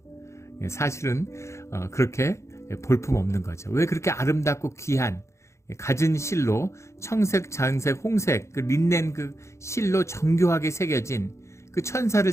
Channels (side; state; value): right; late; 0.14 ms